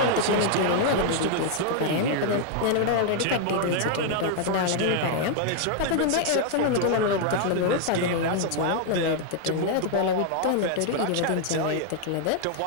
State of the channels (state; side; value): different; both; correlation 0.00